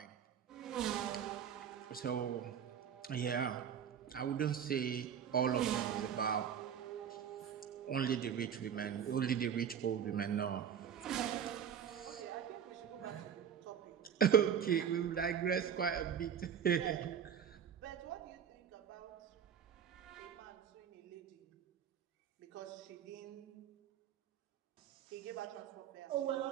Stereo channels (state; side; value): quieter; left; 8.4 dB